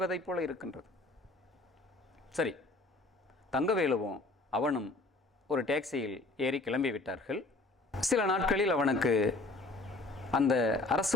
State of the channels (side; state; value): right; quieter; 3.1 dB